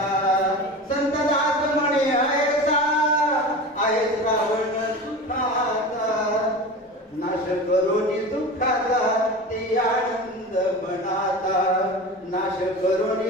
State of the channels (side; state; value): both; normal; correlation 0.31